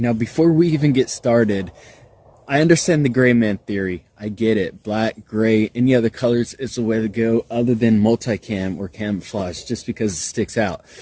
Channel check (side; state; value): both; identical; correlation 1.00